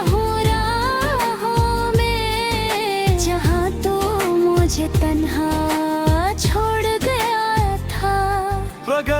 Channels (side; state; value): both; identical; correlation 1.00